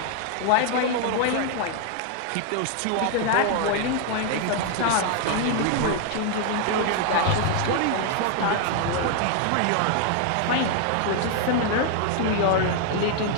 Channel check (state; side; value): different; both; correlation 0.00